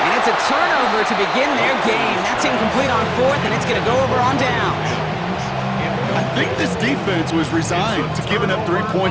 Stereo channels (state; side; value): identical; both; correlation 1.00